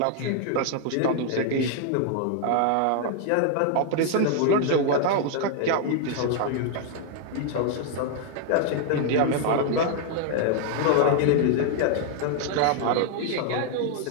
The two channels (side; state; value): both; different; correlation 0.00